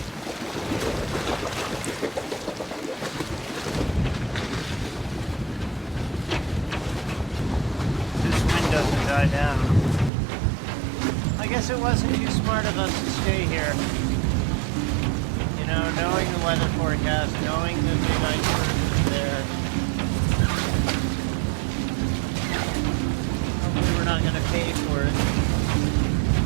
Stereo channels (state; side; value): drops out; left; at 10.1 s